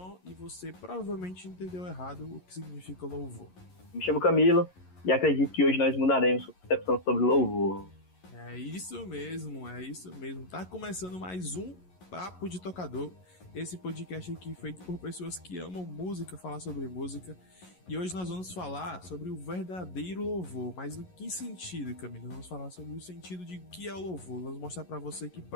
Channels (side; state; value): right; late; 11 ms